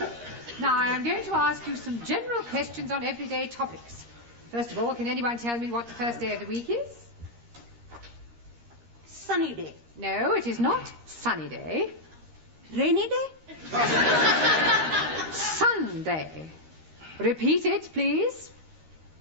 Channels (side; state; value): left; late; 13 ms